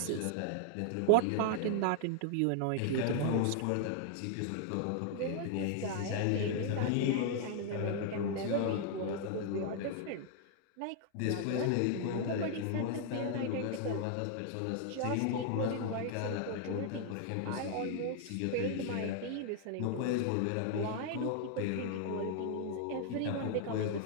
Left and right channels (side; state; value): both; different; correlation 0.00